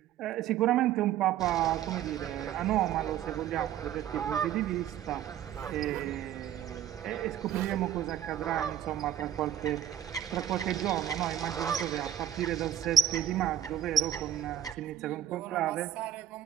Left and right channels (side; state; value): left; quieter; 10.7 dB